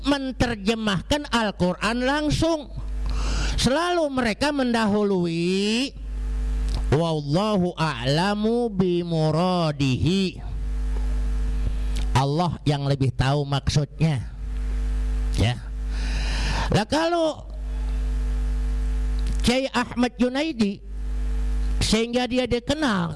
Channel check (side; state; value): both; identical; correlation 1.00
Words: menerjemahkan Al-Quran langsung. Selalu mereka mendahului wallahu a'lamu bimuradihi, Allah yang lebih tahu maksudnya. Ya. Lah kalau Kiai Ahmad Junaidi, sehingga dia